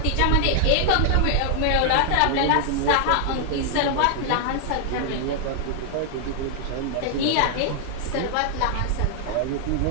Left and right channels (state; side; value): different; both; correlation 0.00